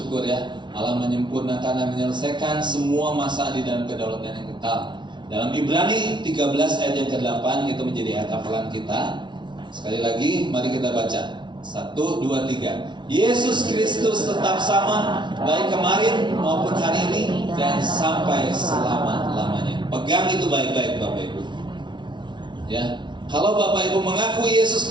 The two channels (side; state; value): left; late; 0.23 ms